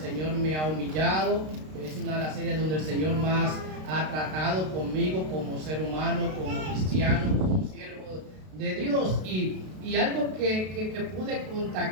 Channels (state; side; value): late; left; 32 ms